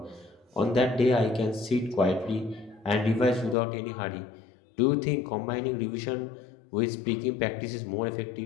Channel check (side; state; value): right; drops out; at 3.6 s